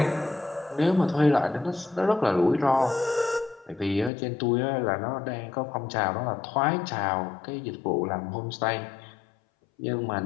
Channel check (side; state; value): right; drops out; at 4.1 s